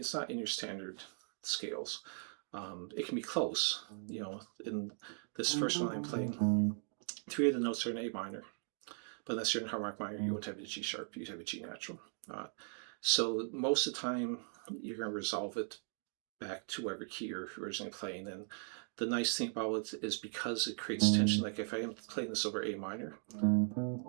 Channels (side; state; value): left; silent; 52 dB below the other